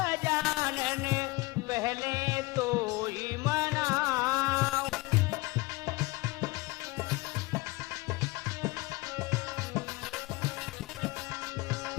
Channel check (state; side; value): quieter; right; 22.9 dB